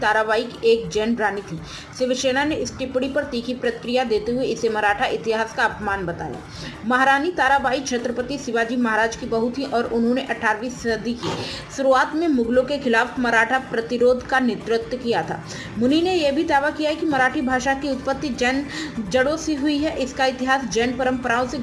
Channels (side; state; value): both; identical; correlation 1.00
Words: एक जैन रानी थी। शिवसेना ने इस टिप्पणी पर तीखी प्रतिक्रिया देते हुए इसे मराठा इतिहास का अपमान बताया। महारानी ताराबाई छत्रपति शिवाजी महाराज की बहू थी और उन्होंने 18वीं सदी की शुरुआत में मुगलों के खिलाफ मराठा प्रतिरोध का नेतृत्व किया था। मुनि ने यह भी दावा किया है कि मराठी भाषा की उत्पत्ति जैन जड़ों से हुई है। इसका इतिहास जैन परंपराओं से